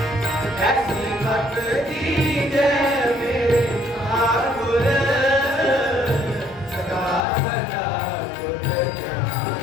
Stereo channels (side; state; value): right; drops out; at 7.2 s